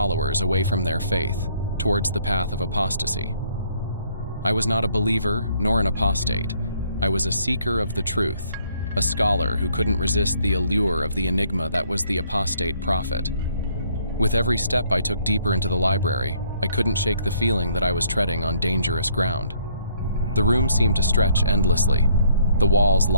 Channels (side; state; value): both; inverted; correlation -0.65